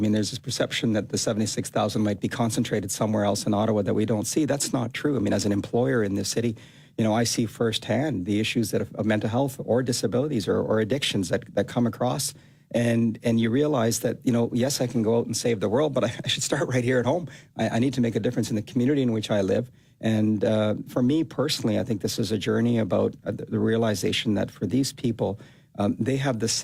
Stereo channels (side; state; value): both; identical; correlation 1.00